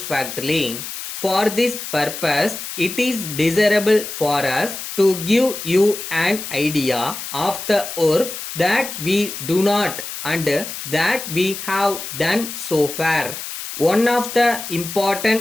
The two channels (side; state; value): left; noise; hiss, 8 dB below the sound